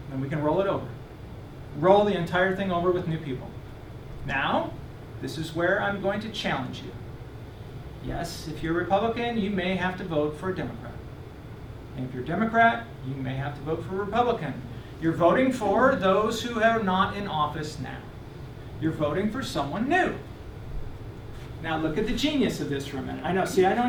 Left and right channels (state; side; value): identical; both; correlation 1.00